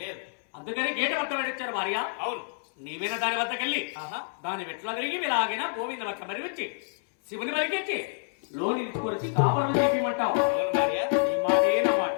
లేదు. అందుకని గేటు వద్ద పెట్టించారు భార్య. అవును, నీవైనా దాని వద్దకెళ్ళి దాని వెట్లా తిరిగి ఇలాగైనా గోవింద లెక్క మరిపించి శివుని మరిగించి లోని తీసుకొచ్చి కాపురం చేపిమంటావు. అవును భార్య, ఈ మాట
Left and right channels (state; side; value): silent; right; 59 dB below the other